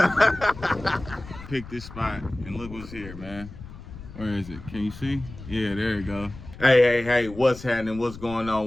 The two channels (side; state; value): left; noise; rumble, 14 dB below the sound